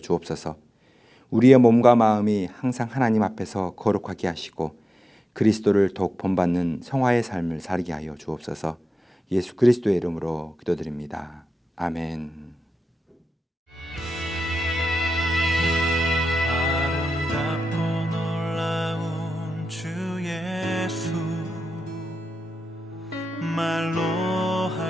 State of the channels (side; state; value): both; normal; correlation 0.92